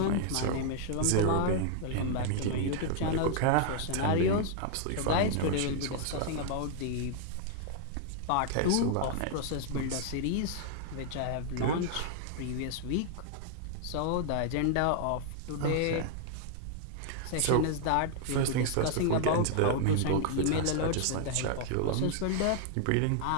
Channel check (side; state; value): both; different; correlation 0.00